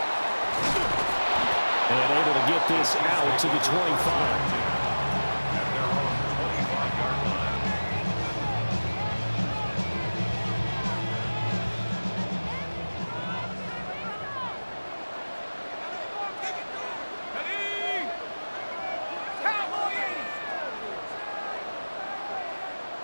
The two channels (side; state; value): both; inverted; correlation -1.00